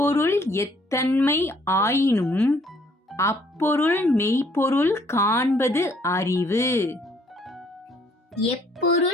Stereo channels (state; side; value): normal; both; correlation 0.63